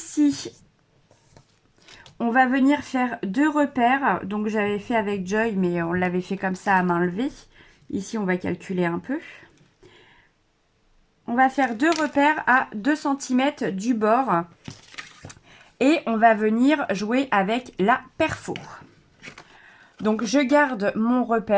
on va venir faire 2 repères. Donc, j'avais fait avec Joy, mais on l'avait fait comme ça à main levée. Ici, on va calculer un peu. On va faire 2 repères à 2 cm du bord. Et on va venir jouer avec la perfo. Donc, je garde mon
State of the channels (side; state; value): both; identical; correlation 1.00